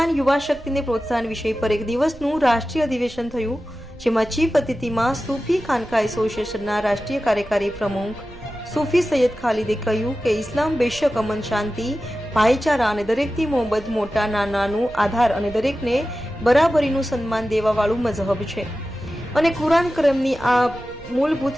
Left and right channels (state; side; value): noise; right; rumble, 19 dB below the sound